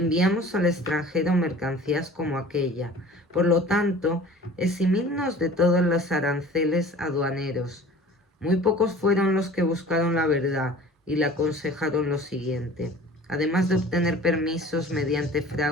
al extranjero mercancías como aquella. Por lo tanto, eximidnos de todos los aranceles aduaneros. Muy pocos fueron los que buscaron la verdad y le aconsejaron lo siguiente: además de obtener permisos mediante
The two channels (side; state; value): both; normal; correlation 0.44